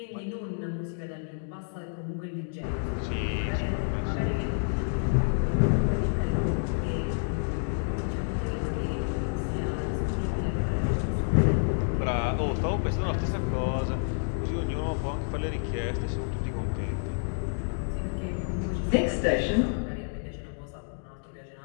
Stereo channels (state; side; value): silent; right; digital silence